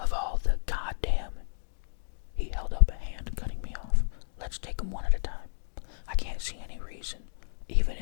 all the goddamn... He held up a hand, cutting me off. Let's take them one at a time. I can't see any reason, even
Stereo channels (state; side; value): silent; right; digital silence